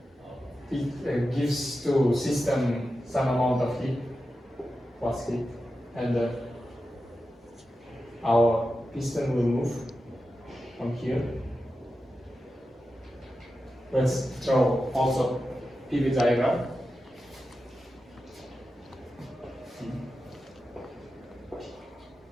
It gives to system some amount of heat plus heat, and our piston will move from here. Let's draw also PV diagram.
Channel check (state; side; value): normal; both; correlation 0.91